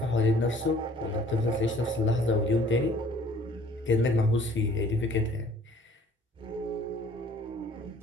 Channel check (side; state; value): both; normal; correlation 0.55